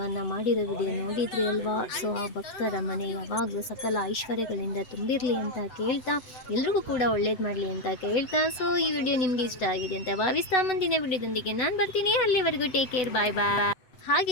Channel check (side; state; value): right; late; 8.0 ms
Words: ಮಾಡಿರೋ ವಿಡಿಯೋ ನೋಡಿದ್ರಿ ಅಲ್ವಾ. ಸೊ ಆ ಭಕ್ತರ ಮನೆ ಯಾವಾಗಲೂ ಸಕಲ ಐಶ್ವರ್ಯಗಳಿಂದ ತುಂಬಿರಲಿ ಅಂತ ಕೇಳ್ತಾ, ಎಲ್ರಿಗೂ ಕೂಡ ಒಳ್ಳೇದು ಮಾಡಲಿ ಅಂತ ಕೇಳ್ತಾ, ಸೊ ಈ ವಿಡಿಯೋ ನಿಮಗೆ ಇಷ್ಟ ಆಗಿದೆ ಅಂತ ಭಾವಿಸ್ತಾ ಮುಂದಿನ ವಿಡಿಯೋದೊಂದಿಗೆ ನಾನು ಬರ್ತೀನಿ. ಅಲ್ಲಿವರೆಗೂ ಟೇಕ್ ಕೇರ್, ಬಾಯ್ ಬಾಯ್.